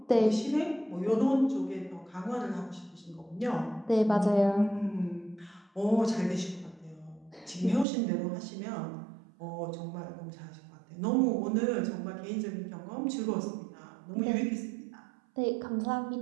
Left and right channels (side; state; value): left; drops out; at 7.9 s